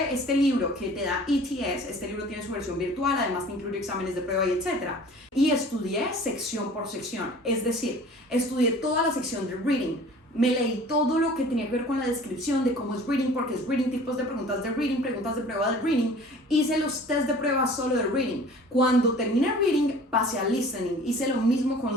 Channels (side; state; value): both; normal; correlation 0.46